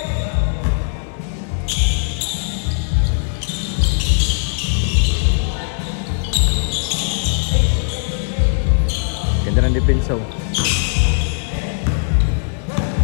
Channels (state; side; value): silent; right; digital silence